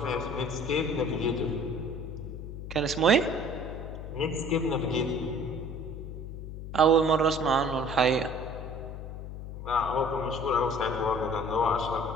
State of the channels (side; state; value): left; noise; hum, 9 dB below the sound